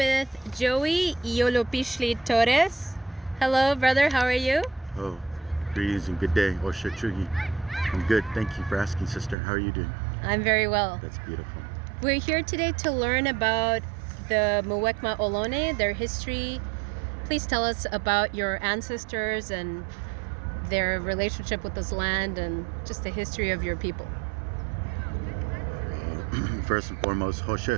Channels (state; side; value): drops out; left; at 9.3 s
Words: Joey Iolopishli Torres. Hello, brother, how are you? Oh, greetings and good day. Osha Chugi. I'm good. Thank you for asking, sister. How are you doing? I'm very well. That's beautiful. We're here today to learn about the Muwekma Ohlone, their history. Please tell us about your ancestors and their relationship with this land and just the history of your people. First and foremost,